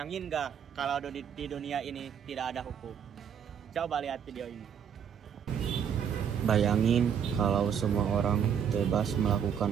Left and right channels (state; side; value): quieter; left; 8.1 dB